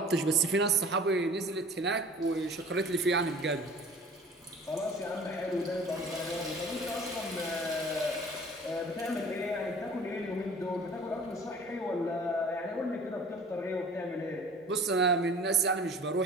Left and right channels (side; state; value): both; normal; correlation 0.46